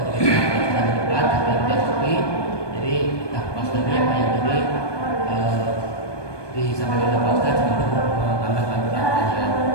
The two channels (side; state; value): right; late; 1.2 ms